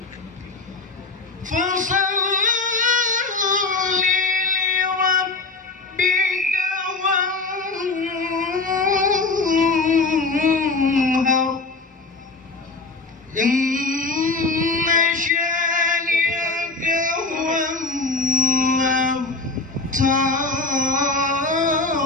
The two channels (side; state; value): right; quieter; 3.6 dB